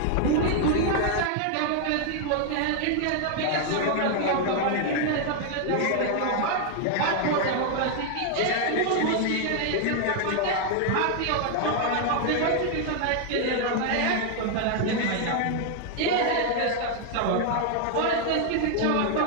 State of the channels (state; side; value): different; both; correlation 0.00